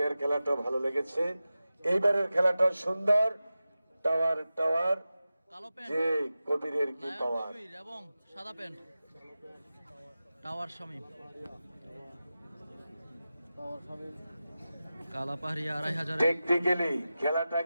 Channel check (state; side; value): inverted; both; correlation -0.94